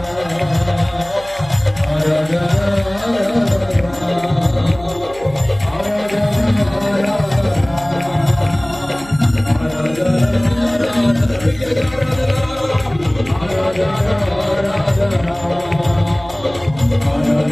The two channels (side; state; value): right; noise; hum, 19 dB below the sound